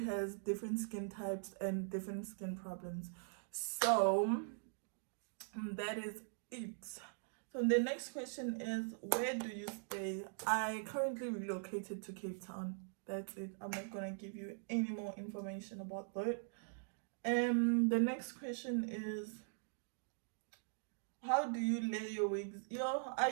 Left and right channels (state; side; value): silent; left; digital silence